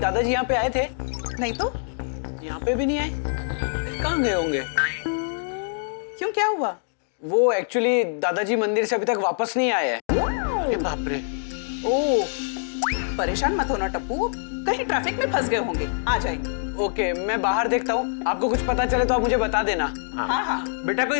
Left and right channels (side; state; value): right; silent; digital silence